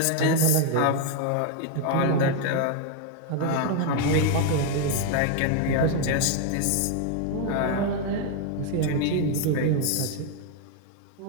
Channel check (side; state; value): both; different; correlation 0.01